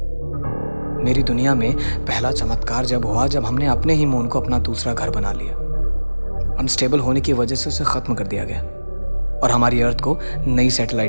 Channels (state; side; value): inverted; both; correlation -1.00